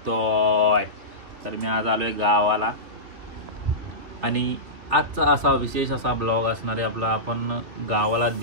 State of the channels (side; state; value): left; late; 3.2 ms